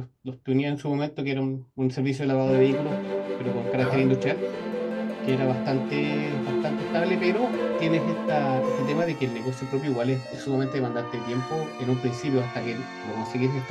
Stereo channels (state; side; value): identical; both; correlation 1.00